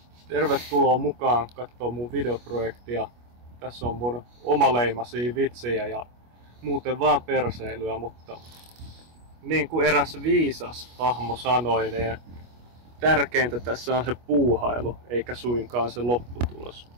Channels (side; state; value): left; late; 25 ms